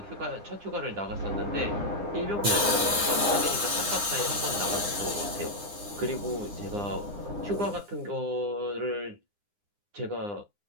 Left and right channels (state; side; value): late; left; 9.8 ms